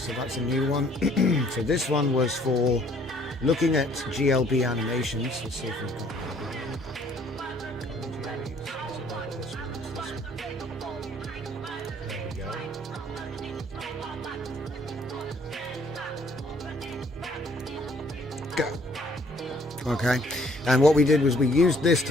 that's a new one. So this one was for looking at GLB animations. Let's see if we've got Okay, and what we did was we used this to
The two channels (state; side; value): normal; both; correlation 0.61